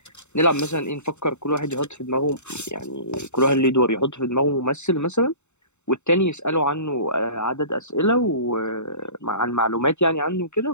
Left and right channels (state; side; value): late; right; 0.83 ms